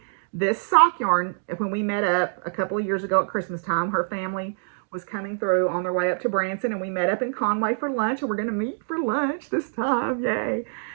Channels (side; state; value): left; silent; digital silence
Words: this sock yarn when we met up a couple of years ago at Christmas time. Her family was coming through on their way up to Branson, and we met up in Conway for lunch, and we're going to meet for lunch this time. Yay.